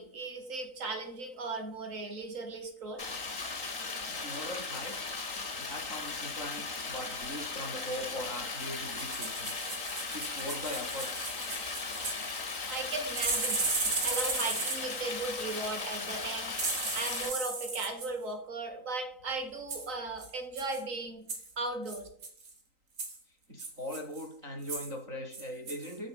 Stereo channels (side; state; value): left; late; 3.9 ms